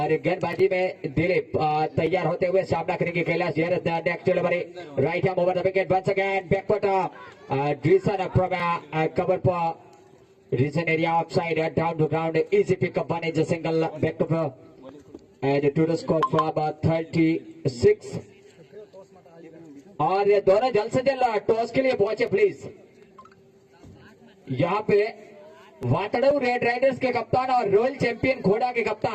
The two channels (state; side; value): identical; both; correlation 1.00